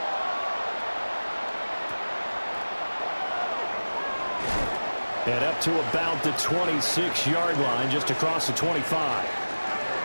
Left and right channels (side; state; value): both; inverted; correlation -1.00